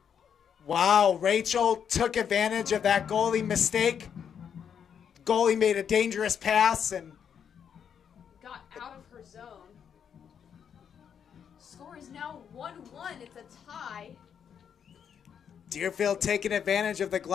Wow, Rachel took advantage of that goalie mistake. Goalie made a dangerous pass and Got out of her zone. Score is now 1-1. It's a tie. Deerfield taking advantage of the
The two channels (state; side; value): quieter; right; 7.9 dB